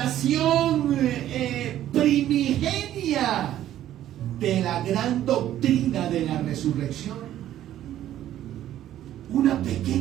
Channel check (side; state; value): left; quieter; 12.3 dB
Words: primigenia de la gran doctrina de la resurrección. Una